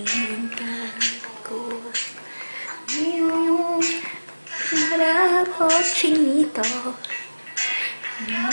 ko ngayong harap o chinito.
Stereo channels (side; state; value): both; inverted; correlation -1.00